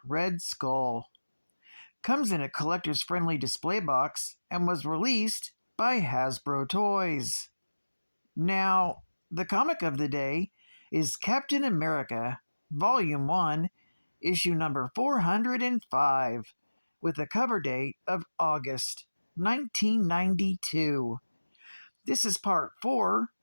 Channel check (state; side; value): inverted; both; correlation -1.00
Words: Red Skull. Comes in a collector's friendly display box and was released by Hasbro Toys. Now, the comic of the day is Captain America, Volume 1, issue number 405. With a cover date of August 1992. This is part 4